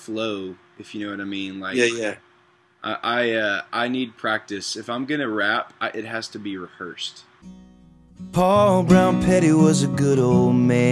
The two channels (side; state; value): both; identical; correlation 1.00